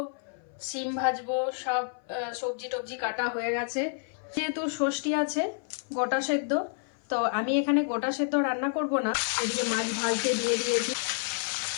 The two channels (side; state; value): right; silent; 56 dB below the other